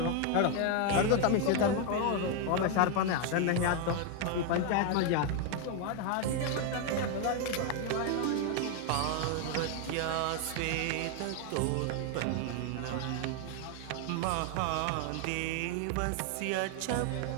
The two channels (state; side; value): different; both; correlation 0.01